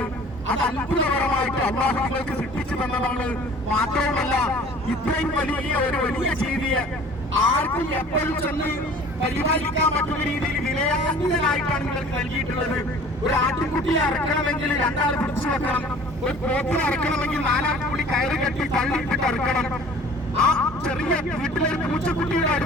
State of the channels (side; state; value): both; normal; correlation 0.48